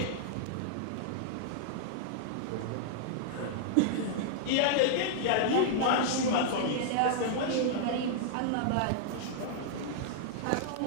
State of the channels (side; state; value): both; different; correlation -0.01